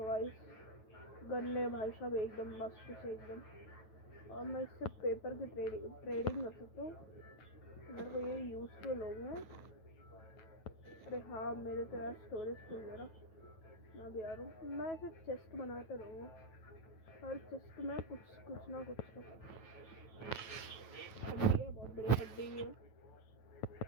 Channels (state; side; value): late; right; 9.3 ms